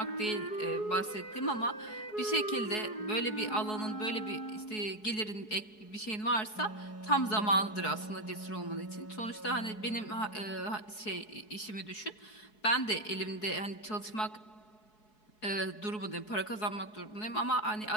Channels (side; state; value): right; late; 4.7 ms